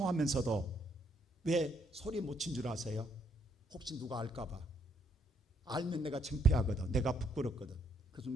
왜 소리 못 친 줄 아세요? 혹시 누가 알까봐. 알면 내가 창피하거든, 내가 부끄럽거든. 그래서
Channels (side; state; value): both; normal; correlation 0.71